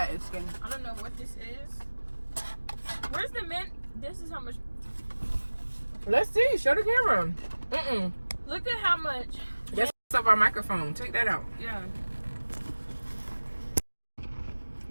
and skin. I don't know what this is. Where's the mint? This is how much. Let's see. Show the camera. Look at how much. That's up our microphone. Take that out. Yeah.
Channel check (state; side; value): inverted; both; correlation -1.00